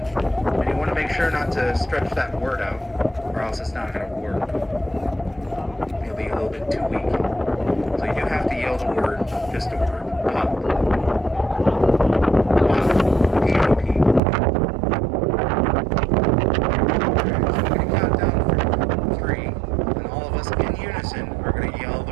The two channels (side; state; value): left; drops out; at 14.2 s